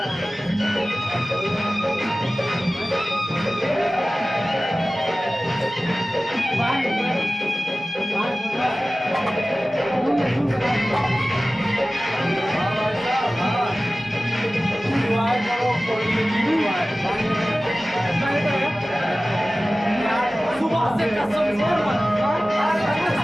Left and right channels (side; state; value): both; normal; correlation 0.97